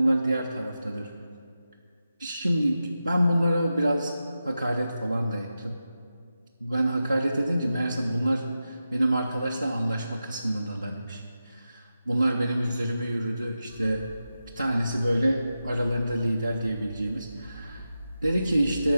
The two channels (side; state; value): both; inverted; correlation -0.91